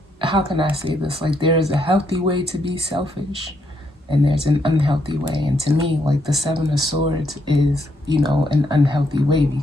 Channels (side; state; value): both; normal; correlation 0.75